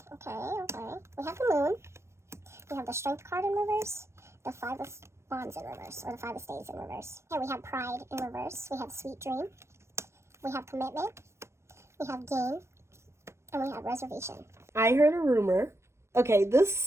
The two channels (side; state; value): left; late; 0.13 ms